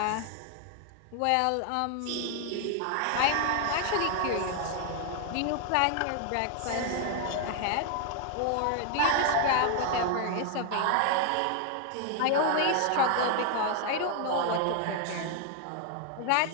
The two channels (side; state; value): both; different; correlation 0.00